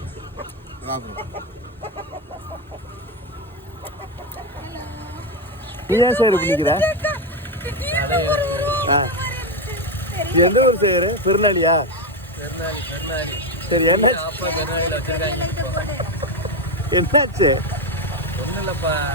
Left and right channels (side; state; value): both; normal; correlation 0.09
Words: நீ ஏன் சார் பண்ணிக்கிற? எந்த ஊர் செய்யற? திருநாளியா? சரி, என்ன என்னாச்சு? ஒன்றும் இல்லைப்பா,